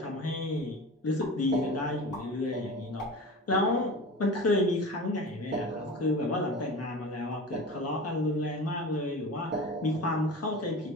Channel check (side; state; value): both; normal; correlation 0.33